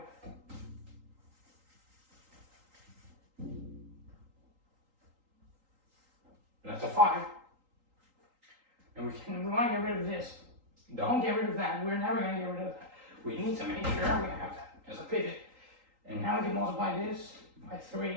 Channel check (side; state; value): left; late; 3.8 ms